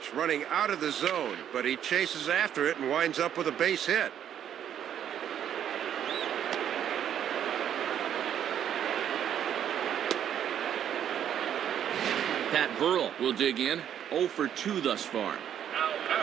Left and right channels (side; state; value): left; quieter; 9.7 dB